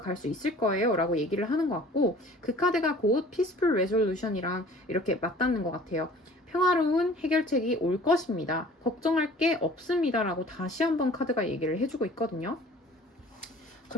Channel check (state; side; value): normal; both; correlation 0.49